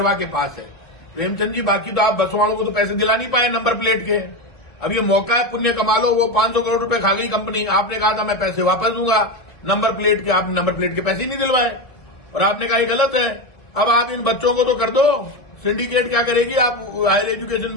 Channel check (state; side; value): late; right; 1.7 ms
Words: के पास है। प्रेमचंद जी, बाकी तो आप बस वालों को तो पैसे दिला नहीं पाए नंबर प्लेट के। अब ये मौका है, पुण्य कमा लो। वो 500 करोड़ रुपए खा गई कंपनी, आपने कहा था मैं पैसे वापस दूंगा नंबर प्लेट के, आपने नंबर प्लेट के पैसे ही नहीं दिलवाए और आपने कहा ये गलत है। अब आप इन बच्चों को तो कर दो। सिंडिकेट क्या करेगी? आप हायर एजुकेशन